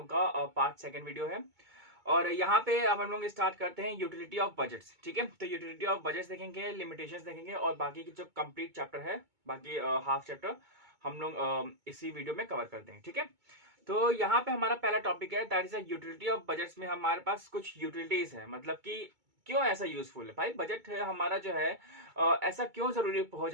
का पार्ट सेकंड वीडियो है। और यहाँ पे अब हम लोग स्टार्ट करते हैं यूटिलिटी ऑफ बजट्स। ठीक है, तो यूटिलिटी ऑफ बजट्स देखेंगे, लिमिटेशंस देखेंगे और बाकी की जो कंप्लीट चैप्टर है, बाकी हाफ चैप्टर हम लोग इसी वीडियो में कवर कर देंगे। ठीक है, तो यहाँ पे हमारा पहला टॉपिक है that is utility of budgets. में हमारे पास कुछ यूटिलिटीज है, मतलब कि क्यों ऐसा यूजफुल है भाई बजट है हमारा जो है। ऐसा क्यों जरूरी हो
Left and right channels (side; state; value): left; late; 2.2 ms